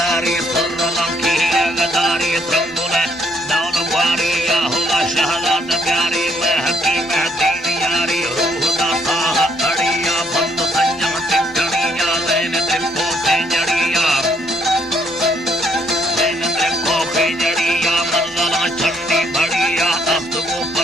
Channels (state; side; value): normal; both; correlation 0.69